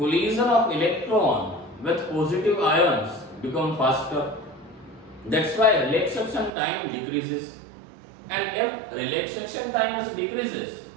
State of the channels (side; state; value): left; drops out; at 6.5 s